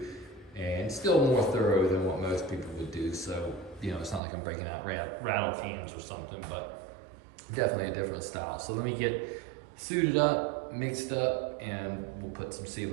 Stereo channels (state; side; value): drops out; left; at 4.2 s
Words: and still more thorough than what most people would do. So, you know, it's not like I'm breaking out rattle cans or something, but definitely a different style. So let me get suited up, mixed up, and we'll put some